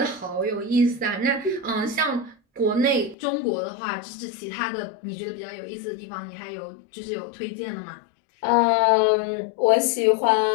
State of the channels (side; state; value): right; drops out; at 3.2 s